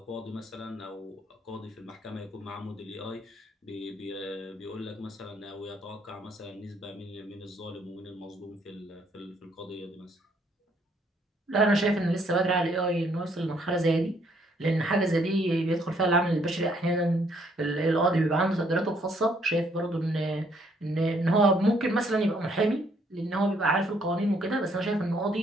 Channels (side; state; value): both; normal; correlation 0.67